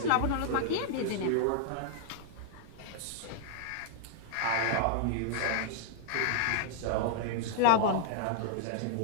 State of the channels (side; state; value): both; different; correlation -0.01